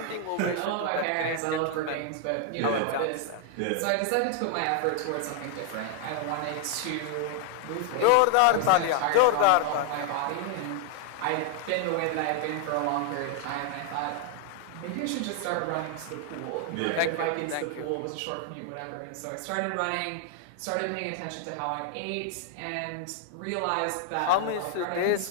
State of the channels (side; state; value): both; different; correlation 0.00